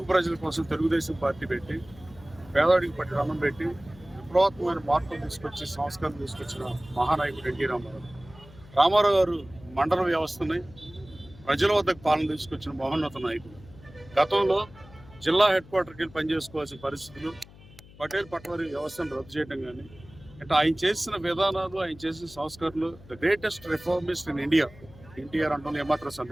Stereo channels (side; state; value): left; noise; hum, 21 dB below the sound